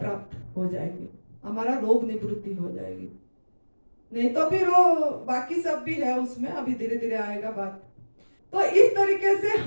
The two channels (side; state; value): both; inverted; correlation -1.00